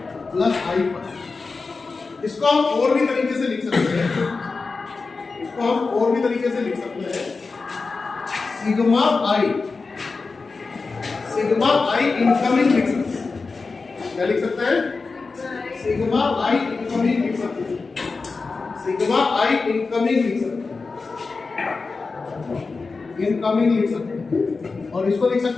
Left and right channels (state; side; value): quieter; right; 4.2 dB